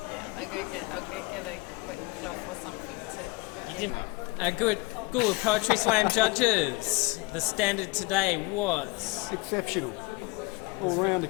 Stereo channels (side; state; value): right; quieter; 23.8 dB